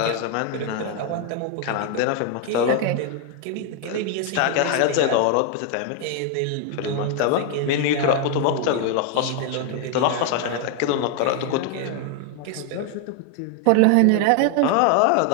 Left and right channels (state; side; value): different; both; correlation 0.00